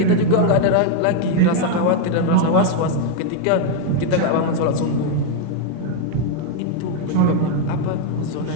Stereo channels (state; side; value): different; both; correlation 0.01